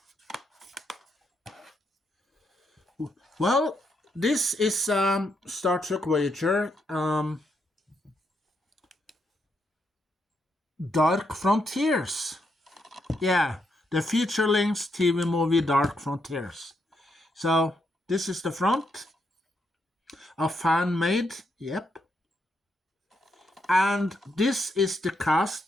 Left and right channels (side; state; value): both; normal; correlation 0.79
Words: Well, this is Star Trek Voyager Dark Frontiers. Yeah, the feature-length TV movie Dark Frontiers. So this is the front. A fan made, yep. And this is the